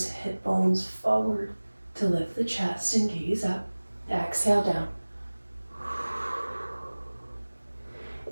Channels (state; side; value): inverted; both; correlation -1.00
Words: hip bones forward to lift the chest and gaze up. Exhale down.